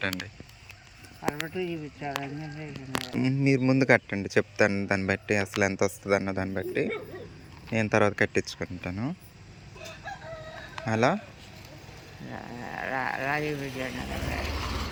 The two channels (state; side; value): identical; both; correlation 1.00